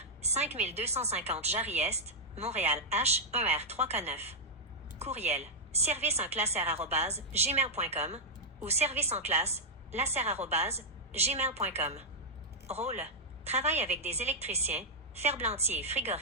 5250 Jarry-Est, Montréal H1R3K9. Courriel. serviceenclasser@gmail.com ou serviceenclasse@gmail.com. Rôle. Travaille avec des électriciens, ferblantiers et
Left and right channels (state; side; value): normal; both; correlation -0.05